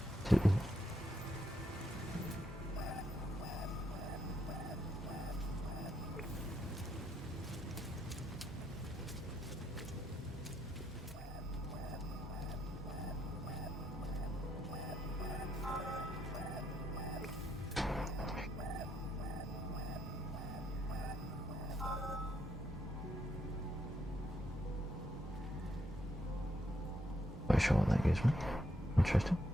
To Quite sure what that gives me. Interesting.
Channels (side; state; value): both; normal; correlation 0.77